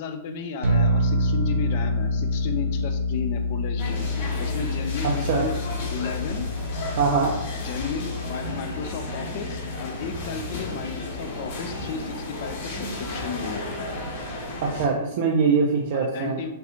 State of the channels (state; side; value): inverted; both; correlation -0.43